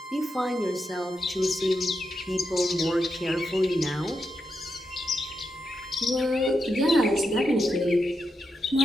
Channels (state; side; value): normal; both; correlation 0.85